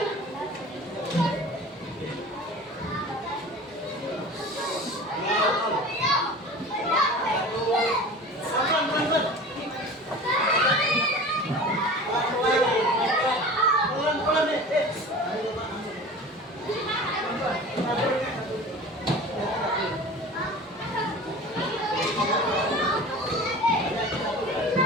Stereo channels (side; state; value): both; normal; correlation 0.38